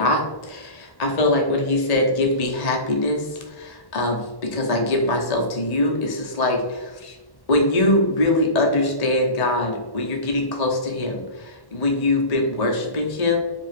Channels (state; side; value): late; right; 1.1 ms